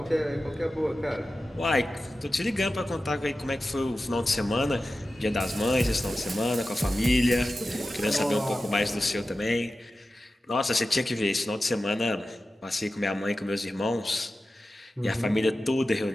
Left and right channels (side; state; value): both; normal; correlation 0.94